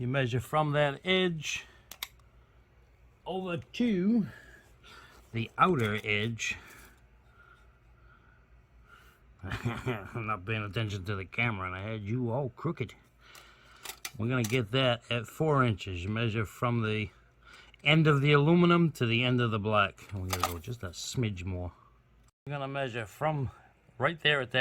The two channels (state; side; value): identical; both; correlation 1.00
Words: measure from that edge over to the outer edge. I'm not paying attention to the camera and I had you all crooked. We're going to get that at 4 inches. You measure from the end of the aluminum to the end of the black. And we're going to go just a smidge more. We're going to measure from right there at